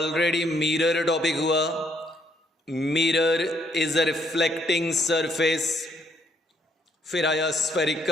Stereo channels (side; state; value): both; normal; correlation 0.70